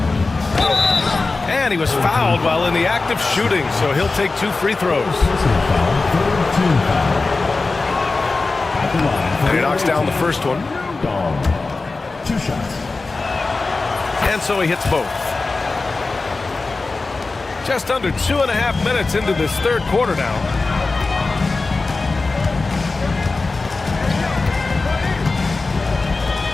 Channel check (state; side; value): quieter; right; 3.7 dB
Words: And he was fouled while in the act of shooting, so he'll take 2 free throws. And he knocks down the first one. 2 shots. And so he hits both. Just under 2.5 minutes into this third quarter now.